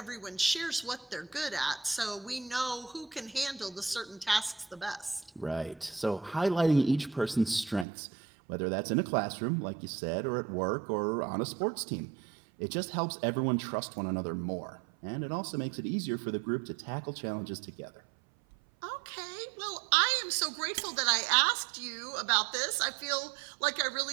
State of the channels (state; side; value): drops out; left; at 7.9 s